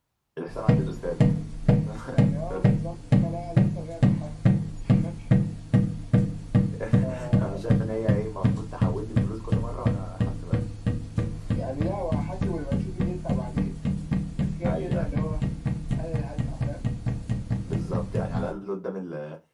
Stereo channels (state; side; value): identical; both; correlation 1.00